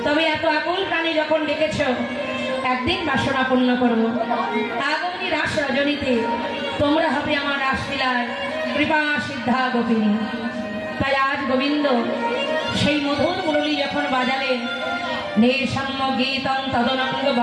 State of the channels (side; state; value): both; identical; correlation 1.00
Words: তবে এত আকুল প্রাণী যখন ডেকেছ, একদিন বাসনা পূর্ণ করবো। আগামী রাস রজনীতে তোমরা হবে আমার রাসলীলায় কৃপা সিদ্ধা গোপিনী। তাই আজ গোবিন্দ সেই মধুর মুরলী যখন বাজালেন, নিঃসম্য গীতং তদনঙ্গ